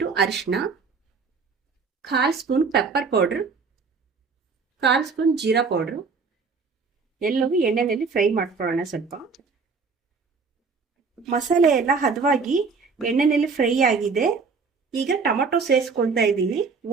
ಅರಿಶಿನ, 1/4 spoon pepper powder, 1/4 spoon jeera powder. ಎಲ್ಲವೂ ಎಣ್ಣೆಯಲ್ಲಿ ಫ್ರೈ ಮಾಡ್ಕೊಳ್ಳೋಣ. ಸ್ವಲ್ಪ ಮಸಾಲೆ ಎಲ್ಲ ಹದವಾಗಿ ಎಣ್ಣೆಯಲ್ಲಿ ಫ್ರೈ ಆಗಿದೆ. ಈಗ ಟೊಮೊಟೊ ಸೇರಿಸ್ಕೊಳ್ತಾ ಇದ್ದೀನಿ.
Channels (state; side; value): quieter; left; 4.9 dB